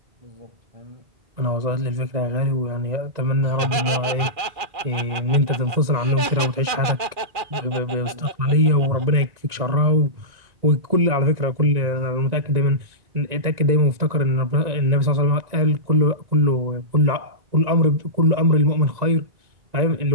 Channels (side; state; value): left; late; 2.4 ms